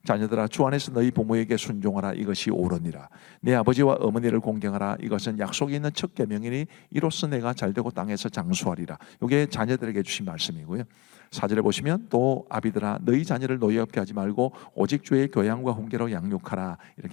자녀들아, 주 안에서 너희 부모에게 순종하라. 이것이 옳으니라. 내 아버지와 어머니를 공경하라. 이것은 약속이 있는 첫 계명이니 이로써 내가 잘되고 땅에서 장수하리라. 이게 자녀들에게 주신 말씀이고요. 4절에 보시면 또 아비들아, 너희 자녀를 노예 없게 하지 말고 오직 주의 교양과 훈계로 양육하라.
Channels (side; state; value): right; quieter; 24.0 dB